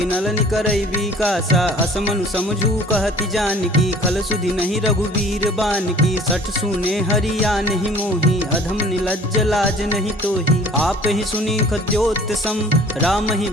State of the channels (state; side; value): normal; both; correlation 0.50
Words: निकरई विकासा। असमनु समझू कहति जानकी खल सुधि नहीं रघुबीर बानकी। सठ सुने हरिया नहीं मोही अधम निलज्ज लाज नहीं तोही। आप ही सुनी खद्योत सम राम ही